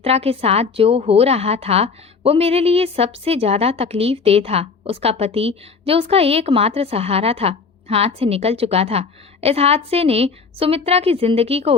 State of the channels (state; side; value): quieter; right; 5.1 dB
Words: के साथ जो हो रहा था वो मेरे लिए सबसे ज्यादा तकलीफ दे था। उसका पति, जो उसका एकमात्र सहारा था, हाथ से निकल चुका था। इस हादसे ने सुमित्रा की जिंदगी को